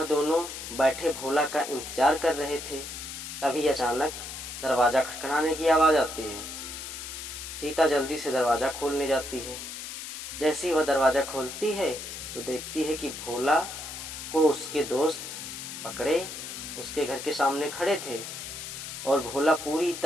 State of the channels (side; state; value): left; noise; hiss, 9 dB below the sound